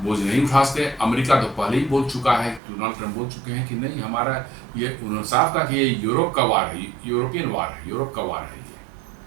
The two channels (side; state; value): left; drops out; at 2.6 s